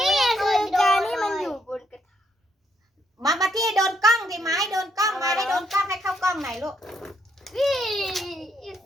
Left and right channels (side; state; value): both; normal; correlation 0.74